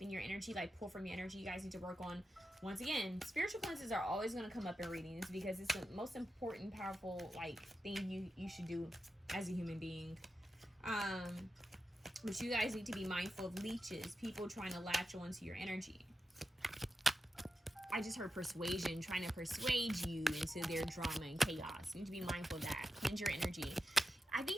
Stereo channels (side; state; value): both; normal; correlation 0.90